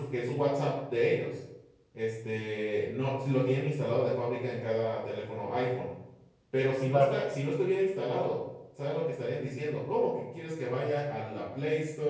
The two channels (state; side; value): identical; both; correlation 1.00